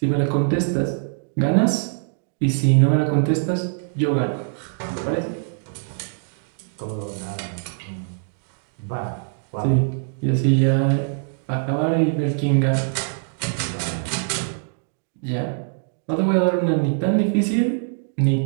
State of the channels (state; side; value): silent; left; digital silence